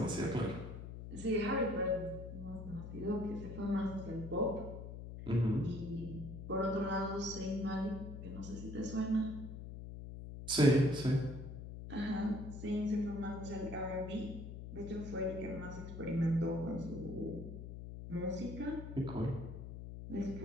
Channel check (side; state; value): left; noise; hum, 9 dB below the sound